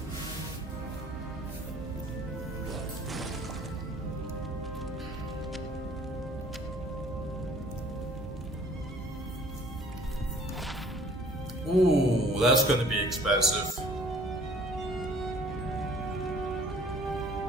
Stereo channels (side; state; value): both; normal; correlation 0.53